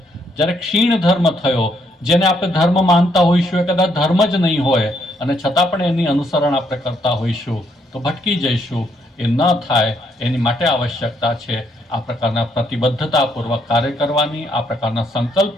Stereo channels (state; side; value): normal; both; correlation 0.73